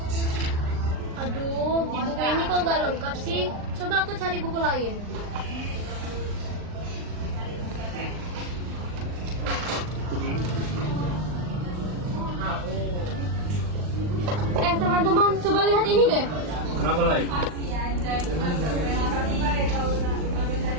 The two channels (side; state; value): left; late; 39 ms